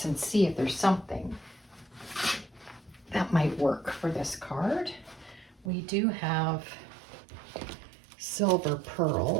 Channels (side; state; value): left; drops out; at 5.7 s